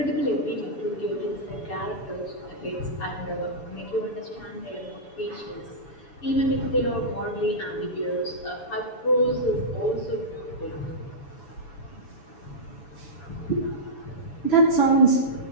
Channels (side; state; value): right; late; 6.9 ms